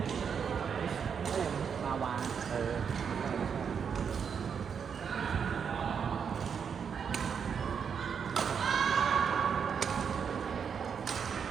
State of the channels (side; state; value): left; quieter; 6.9 dB